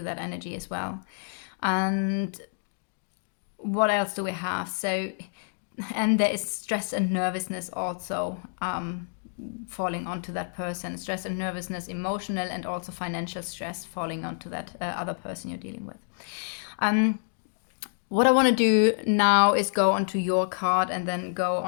that energy as well. And what else do we have? So, and there is stress and nervousness also falling onto that person. Stress and nervousness, emotional and also financial stress falling onto that other person you're dealing with. What I want to do now is go onto your card and then go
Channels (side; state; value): right; silent; digital silence